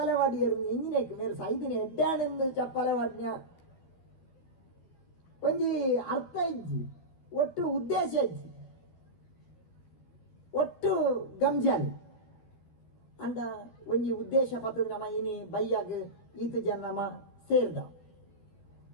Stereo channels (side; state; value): right; late; 13 ms